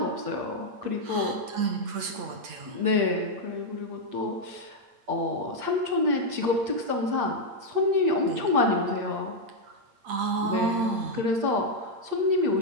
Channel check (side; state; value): left; late; 8.7 ms